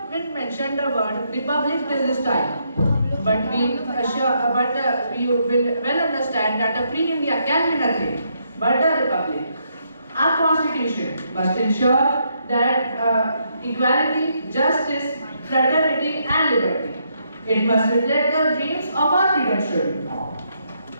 been mentioned the word republic till this time, but we will well understand that a free India can be nothing but a republic. Our constitution must ensure that equality, justice, fraternity and liberty. It must reflect the dreams of our freedom children.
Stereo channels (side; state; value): both; inverted; correlation -0.76